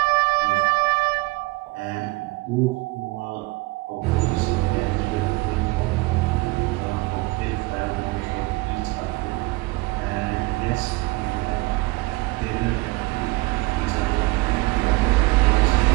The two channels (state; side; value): quieter; left; 23.5 dB